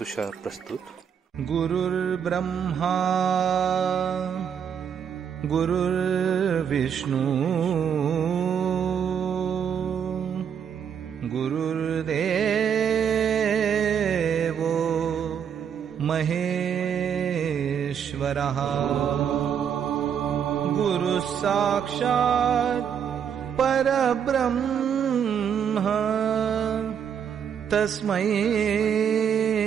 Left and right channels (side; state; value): left; quieter; 8.0 dB